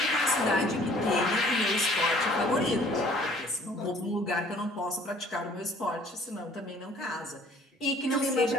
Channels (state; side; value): normal; both; correlation 0.55